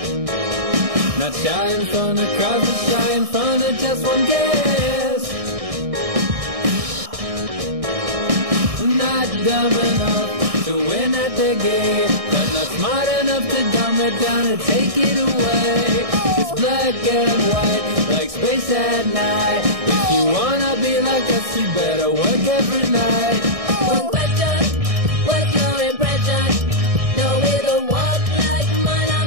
Not shy in front of crowds, but shy in front of just one guest. Not dumb enough to win at the game, but not smart enough to dumb it down and take it away. It's black and white, like space at night. If you wanna be like us, you better work every night. One question, what's your impression? No way to walk like mine,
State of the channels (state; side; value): late; left; 1.6 ms